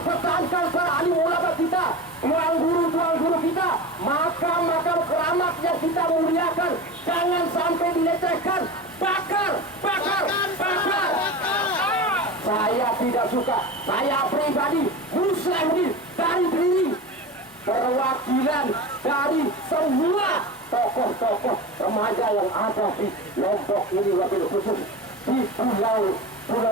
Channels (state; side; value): normal; both; correlation 0.29